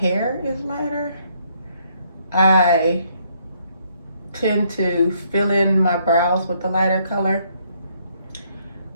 is lighter, I tend to fill in my brows with the lighter color.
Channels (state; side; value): inverted; both; correlation -0.69